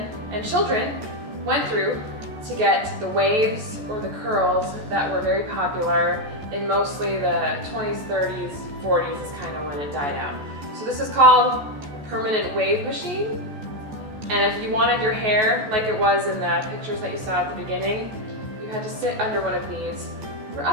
and children went through to get the waves or the curls that were very popular in mostly the 20s, 30s, 40s is kind of when it died out. So this is called permanent wave machine, and if you wanted your hair like it was in the pictures that you saw at the beginning, you had to sit under one of these for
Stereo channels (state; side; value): late; left; 14 ms